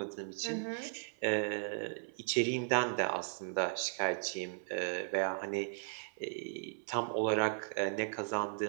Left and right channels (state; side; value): silent; left; 53 dB below the other